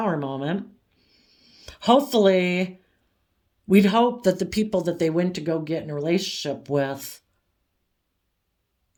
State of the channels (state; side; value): identical; both; correlation 1.00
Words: moment. Hopefully, we'd hope that the people that they went to go get in a relationship with,